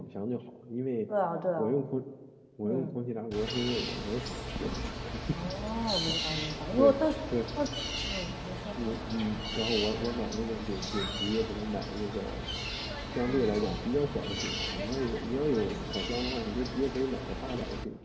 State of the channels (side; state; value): both; identical; correlation 1.00